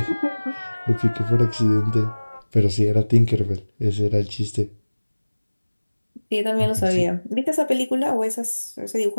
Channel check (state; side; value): inverted; both; correlation -1.00